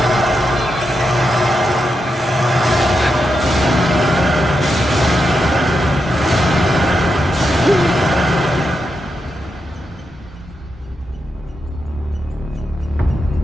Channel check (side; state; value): both; normal; correlation 0.85